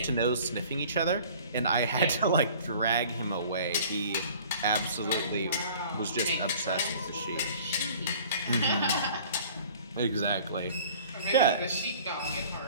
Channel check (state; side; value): inverted; both; correlation -0.48